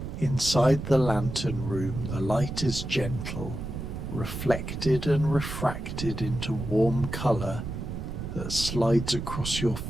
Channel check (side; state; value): right; noise; rumble, 6 dB below the sound